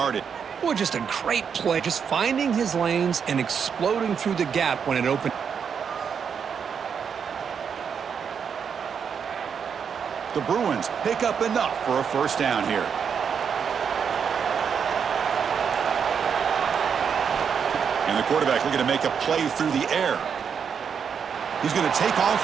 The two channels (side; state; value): left; quieter; 6.9 dB